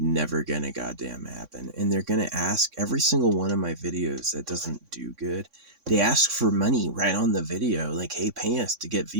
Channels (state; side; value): late; left; 3.6 ms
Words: gonna goddamn happen. And they're gonna ask every single one of my videos that doesn't do good. They ask for money right on the video, like, hey, pay us to get